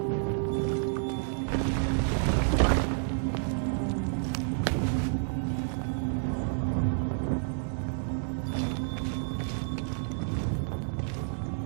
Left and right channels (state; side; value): silent; left; digital silence